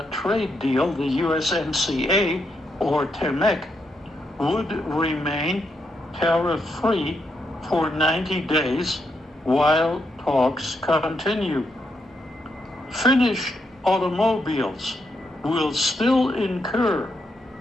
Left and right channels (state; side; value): normal; both; correlation 0.80